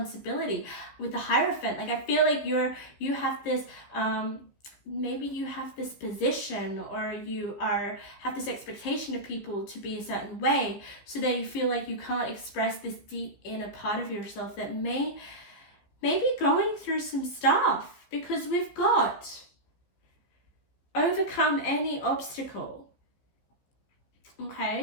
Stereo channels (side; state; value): right; late; 15 ms